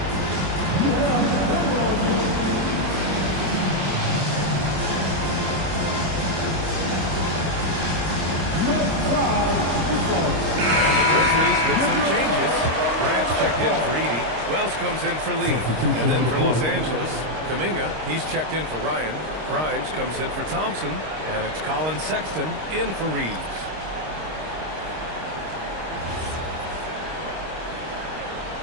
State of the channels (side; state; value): left; late; 26 ms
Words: With some changes. Grant's checked in for Edey. Wells comes in for Lee. And then for Los Angeles, Kuminga, he's checked in for Ryan. Grimes comes in for Thompson. And it's Colin Sexton in for Reeves.